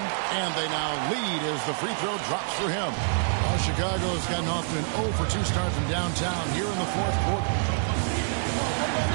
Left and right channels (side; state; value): left; silent; digital silence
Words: And they now lead as the free throw drops for him. Well, Chicago has gotten off to an 0 for 2 start from downtown here in the fourth quarter.